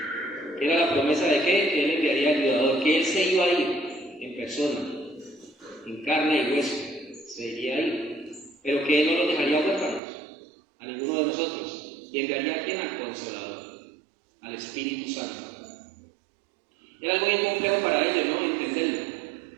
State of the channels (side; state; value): left; drops out; at 10.0 s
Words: que era la promesa de que él enviaría al ayudador, que él se iba a ir en persona, en carne y hueso, se iría a ir, pero que él no los dejaría huérfanos a ninguno de nosotros, y enviaría a quien, al Consolador, al Espíritu Santo. Era algo bien complejo para ellos, ¿no? Entenderlo